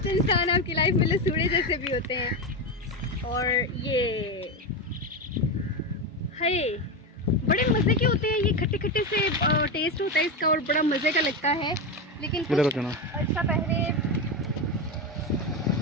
इंसान आपकी लाइफ में लसूड़े जैसे भी होते हैं। और ये है बड़े मज़े के होते हैं, ये खट्टे खट्टे से टेस्ट होता है इसका और बड़ा मज़े का लगता है। लेकिन कुछ अर्सा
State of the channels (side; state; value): both; normal; correlation 0.14